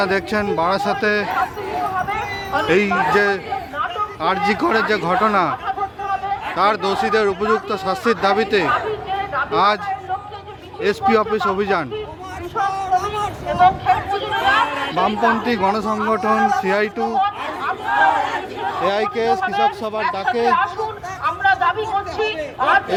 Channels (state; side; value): identical; both; correlation 1.00